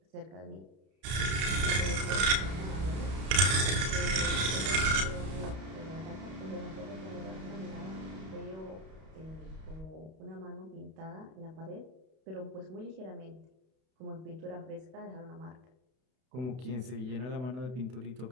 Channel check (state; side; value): late; left; 32 ms